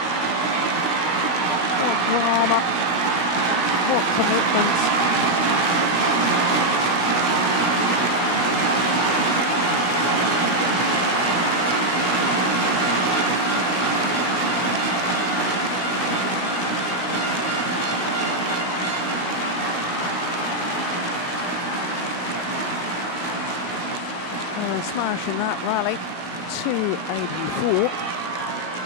smash in that rally. 284.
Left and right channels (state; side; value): late; right; 16 ms